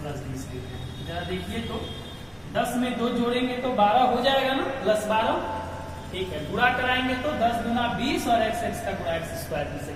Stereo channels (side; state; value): both; identical; correlation 1.00